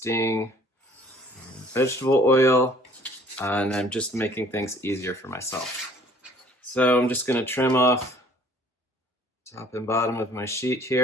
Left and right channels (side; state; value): both; normal; correlation 0.55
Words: vegetable oil, and I'm just making things easier for myself. So I'm just going to trim off top and bottom of my sheet